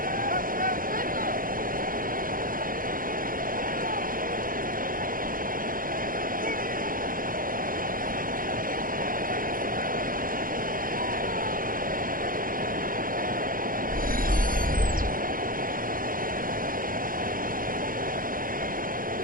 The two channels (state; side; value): late; left; 0.41 ms